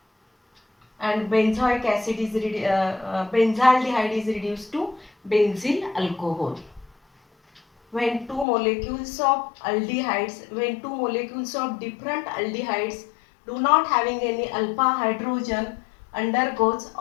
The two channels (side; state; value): right; drops out; at 8.5 s